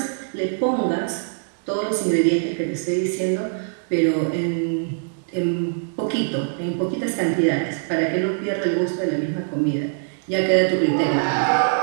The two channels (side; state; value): left; silent; 64 dB below the other